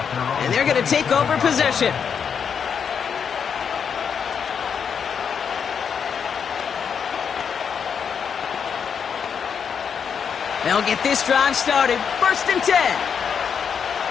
And they're going to take over possession. They'll get this drive started. 1st and 10.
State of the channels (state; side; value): quieter; right; 7.0 dB